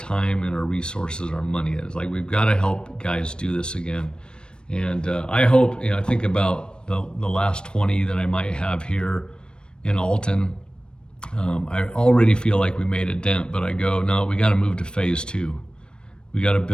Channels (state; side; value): late; right; 0.052 ms